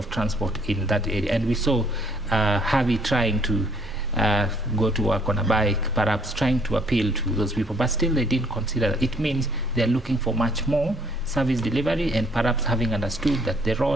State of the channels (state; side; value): normal; both; correlation 0.63